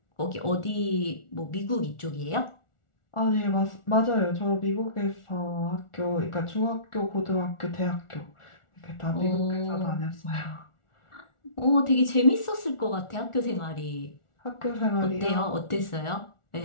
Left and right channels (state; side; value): late; right; 1.4 ms